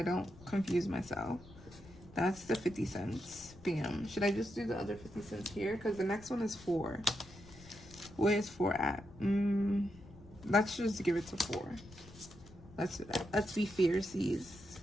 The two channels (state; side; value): noise; left; rumble, 20 dB below the sound